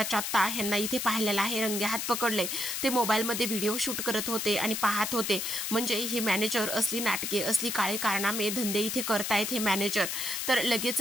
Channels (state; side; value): noise; left; hiss, 2 dB below the sound